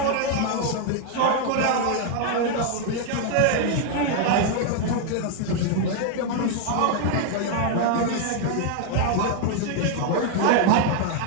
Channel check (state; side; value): different; both; correlation 0.00